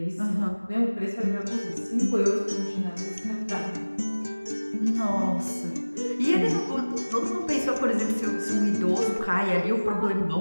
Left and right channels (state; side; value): inverted; both; correlation -1.00